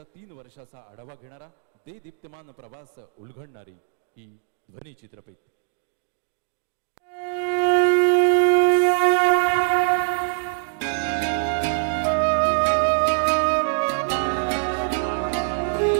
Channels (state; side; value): silent; left; digital silence